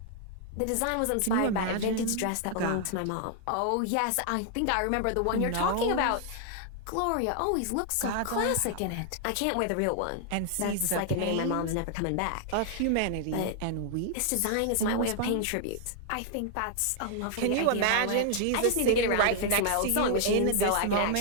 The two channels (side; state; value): both; different; correlation 0.00